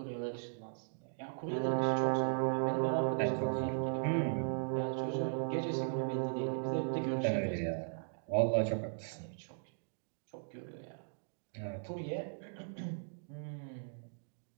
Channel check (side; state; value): left; silent; digital silence